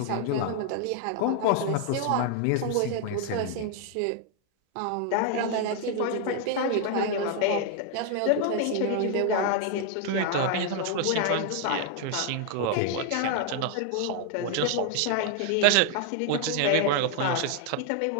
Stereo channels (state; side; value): different; both; correlation 0.00